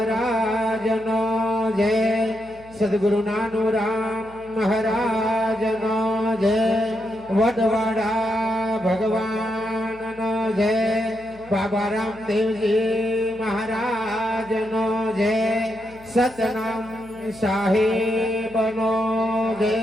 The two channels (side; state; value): left; noise; hum, 23 dB below the sound